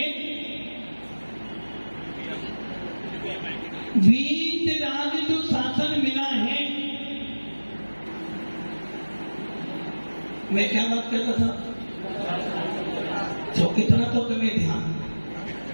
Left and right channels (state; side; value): inverted; both; correlation -1.00